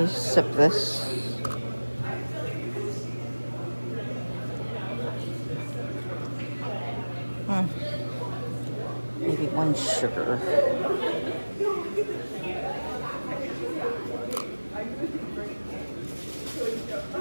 sip this. Maybe 1 sugar.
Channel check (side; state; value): both; inverted; correlation -1.00